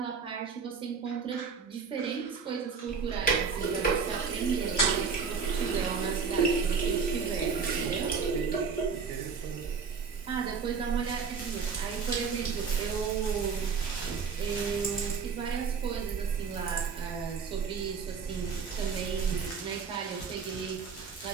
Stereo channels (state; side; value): quieter; left; 5.7 dB